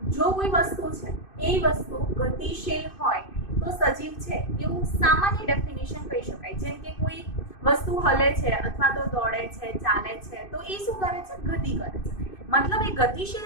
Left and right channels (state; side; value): late; right; 2.6 ms